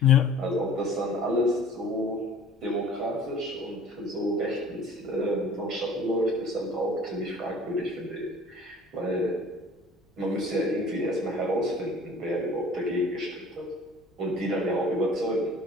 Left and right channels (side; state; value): both; normal; correlation 0.48